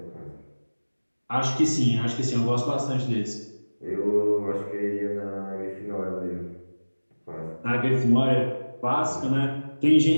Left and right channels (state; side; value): inverted; both; correlation -1.00